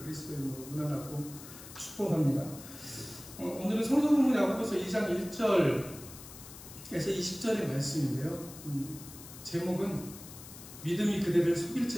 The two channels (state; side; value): noise; left; hiss, 15 dB below the sound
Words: 이름으로 문안하고 축복합니다. 오늘은 성서본문 야고보서 2장 1절에서 20절의 말씀인데요. 제목은 믿음이 그대를